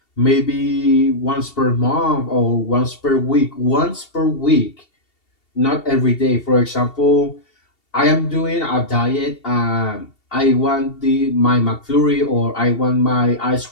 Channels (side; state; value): right; late; 2.7 ms